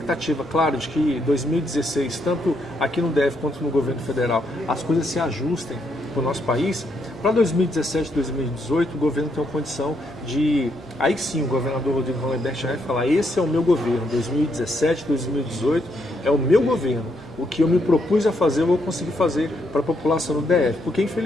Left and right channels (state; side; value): normal; both; correlation 0.76